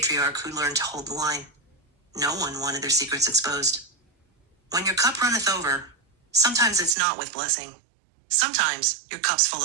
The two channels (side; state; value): left; drops out; at 7.0 s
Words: who learned to hold the line. No one wanted their secrets exposed. When your cup runneth over, sometimes it's not with blessing. Sometimes your cup's full